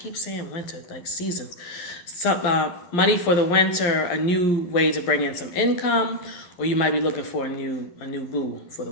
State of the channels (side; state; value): right; late; 11 ms